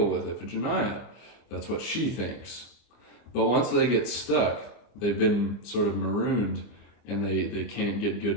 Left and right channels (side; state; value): right; late; 25 ms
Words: with Iphigenia. That's what she thinks. But once they get stuck, they've been sort of marooned, and they can't get